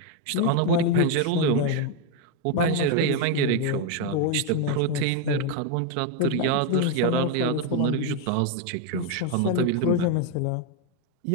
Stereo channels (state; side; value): different; both; correlation 0.02